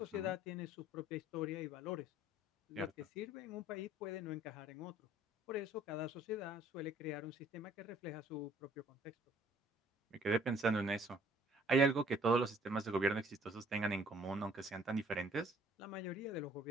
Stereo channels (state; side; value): normal; both; correlation 0.57